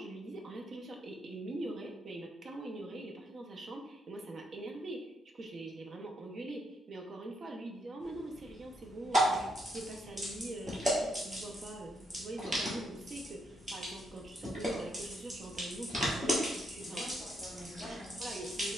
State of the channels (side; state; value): both; normal; correlation 0.77